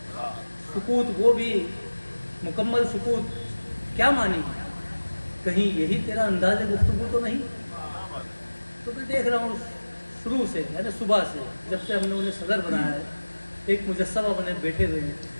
सुकूत वो भी मुकम्मल सुकूत क्या मानी, कहीं यही तेरा अंदाज़ गुफ्तगू तो नहीं। तो मैं देख रहा हूँ शुरू से, यानी सुबह से जब से हमने उन्हें सदर बनाया है, एक मुजस्समा बने बैठे हुए हैं,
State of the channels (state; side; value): inverted; both; correlation -1.00